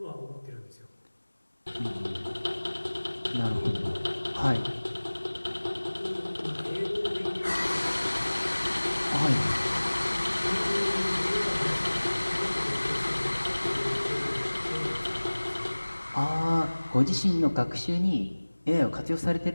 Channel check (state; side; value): inverted; both; correlation -1.00